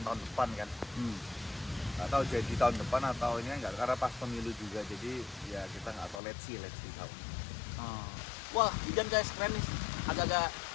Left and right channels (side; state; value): right; drops out; at 6.2 s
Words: depan kan. Nggak tahu jadi tahun depan atau ini enggak, karena pas pemilu juga, jadi ya kita nggak tahu, let's see tahu. Wah, hujan guys, keren nih. Agak-agak